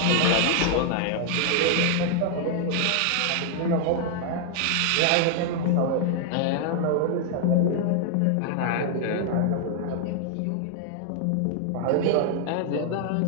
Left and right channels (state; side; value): different; both; correlation 0.00